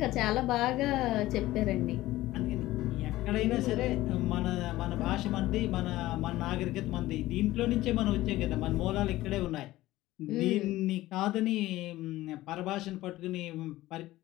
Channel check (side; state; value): right; quieter; 16.6 dB